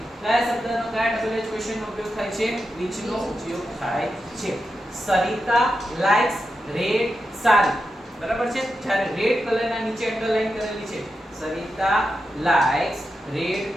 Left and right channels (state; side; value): normal; both; correlation 0.89